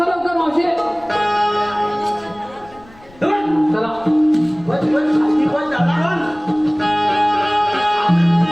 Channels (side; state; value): left; noise; rumble, 25 dB below the sound